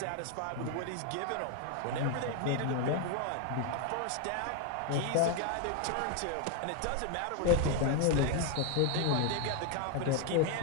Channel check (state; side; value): different; both; correlation 0.01